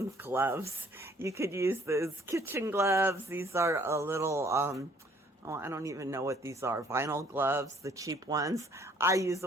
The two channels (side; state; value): both; normal; correlation 0.61